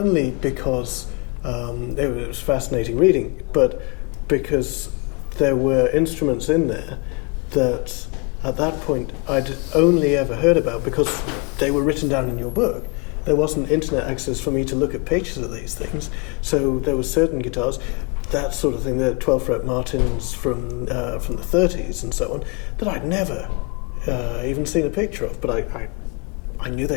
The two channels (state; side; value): quieter; right; 29.9 dB